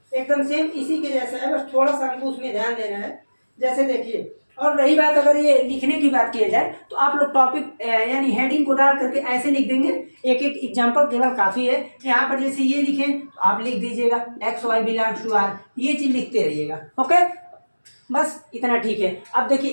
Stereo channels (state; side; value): inverted; both; correlation -1.00